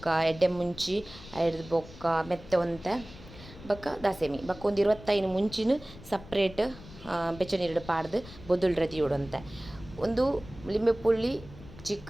ಎಡ್ಡೆ ಮುಂಚಿ ಐಡ್ದು ಬೊಕ್ಕ ಮೆತ್ತೆ ಒಂತೆ ಬೊಕ್ಕ ದಾಸೆಮಿ ಬೊಕ್ಕ ಒಂದು 25 ಮುಂಚಿನ ಸಪ್ರೇಟ್ ಬೆಚ್ಚ ನೀರು ಪಾಡ್ದು ಬೊದ್ದುಲ್ ರೆಡಿ ಉಡಂತೆ ಒಂದು ಲಿಂಬೆ ಪುಳ್ಳಿ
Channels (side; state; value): left; noise; rumble, 17 dB below the sound